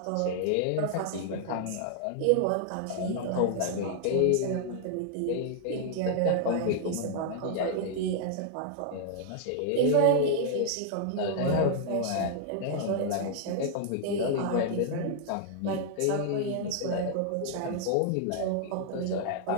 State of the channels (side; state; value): both; different; correlation -0.01